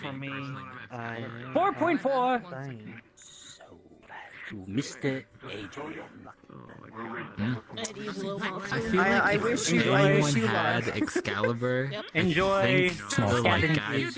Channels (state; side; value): identical; both; correlation 1.00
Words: me. 4.4. To Mr. Adrian. I feel like I if wish you had luck. Excalibur, Enjoy I think the like guys